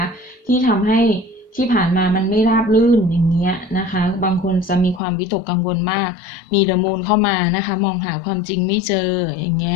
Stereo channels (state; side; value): drops out; right; at 5.0 s